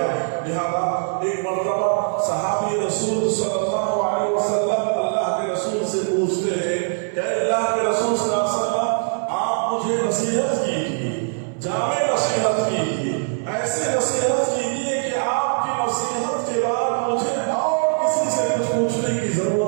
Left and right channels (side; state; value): left; silent; digital silence